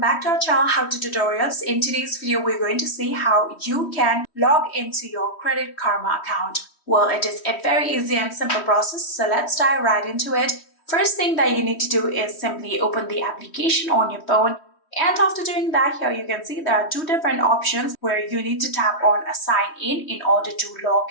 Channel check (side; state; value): right; late; 3.1 ms